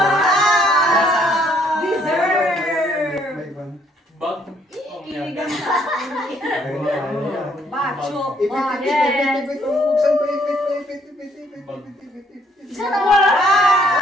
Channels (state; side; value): normal; both; correlation 0.66